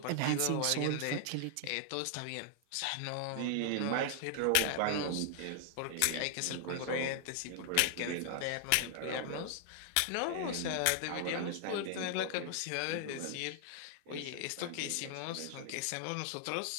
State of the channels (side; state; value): both; different; correlation 0.00